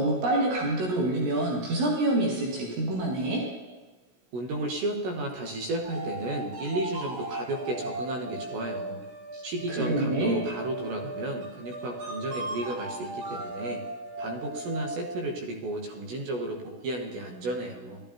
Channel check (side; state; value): left; late; 16 ms